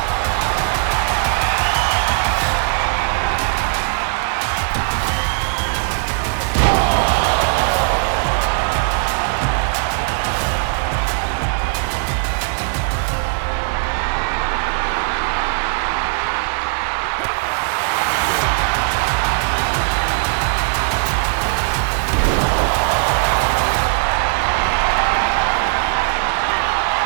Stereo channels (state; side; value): silent; left; 67 dB below the other